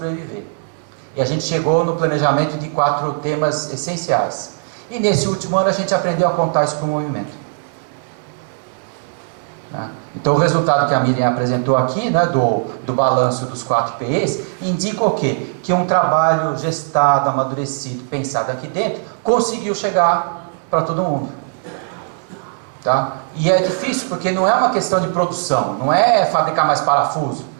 E a gente chegou no planejamento de 4 temas essenciais. E nesse último ano a gente aprendeu a contar isso para o movimento. Então o resultado que a Miriam apresentou aqui, né, do balanço dos 4 PEs, indica o quê? Que um trabalho gestado, amadurecido, pensado aqui dentro, conseguiu chegar para todo mundo. Tá? E é difícil porque não é uma questão de produção, não é fabricar mais parafuso,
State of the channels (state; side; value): silent; left; digital silence